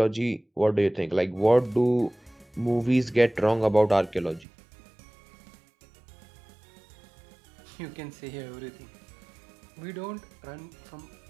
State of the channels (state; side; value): drops out; left; at 4.5 s